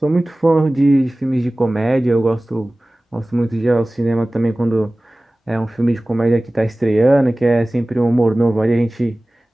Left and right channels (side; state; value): both; normal; correlation 0.98